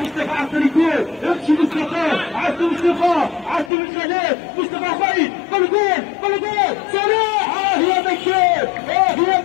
عن طريقه امشي مصطفى عد مصطفى عد الخلاف مصطفى خير بالجول صلاح يا بكير يا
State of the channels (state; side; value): drops out; right; at 3.7 s